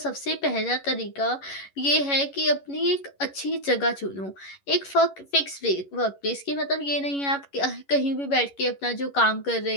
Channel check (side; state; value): right; late; 11 ms